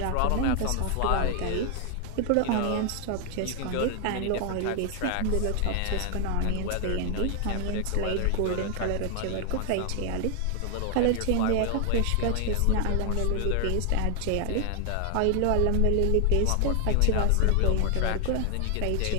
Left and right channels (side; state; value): both; different; correlation 0.00